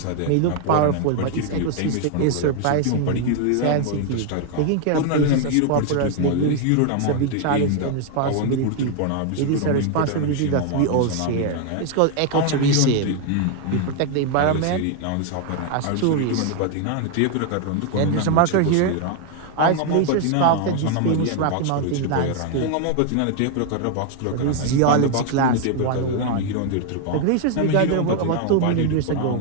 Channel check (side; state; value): both; different; correlation 0.00